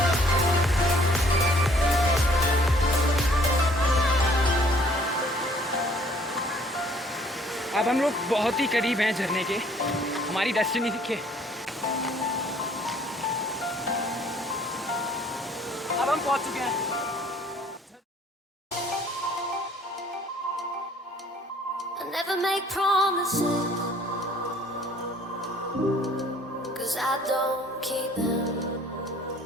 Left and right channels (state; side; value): normal; both; correlation 0.58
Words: अब हम लोग बहुत ही करीब हैं झरने के, हमारी डेस्टिनी दिखे। अब हम पहुंच चुके हैं। I never make promises, 'cause I don't keep them.